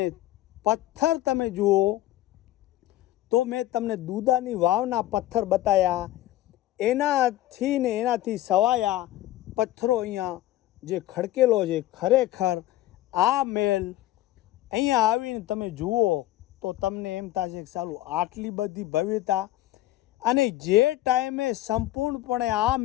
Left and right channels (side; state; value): right; quieter; 15.1 dB